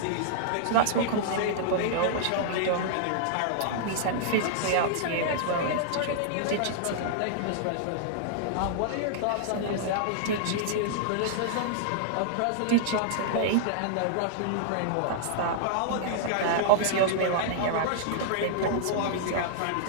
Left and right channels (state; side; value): different; both; correlation -0.01